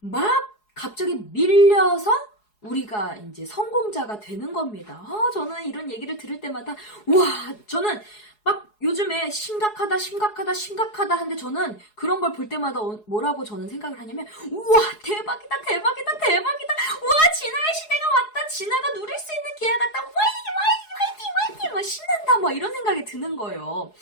갑자기 밀려서 우리가 이제 성공자가 되는 겁니다. 저는 이런 얘기를 들을 때마다 저는 막 요즘에 심각하다 하는데 저는 그런 걸 볼 때마다 뭐라고 저는 생각을 하냐면 우와 대박이다 우와 진화의 시대가 왔다, 진화가 누릴 수 있는 기회가 왔다, 화이팅 막 신난다 막 이런 생각이 드는 거예요.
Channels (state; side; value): late; right; 4.7 ms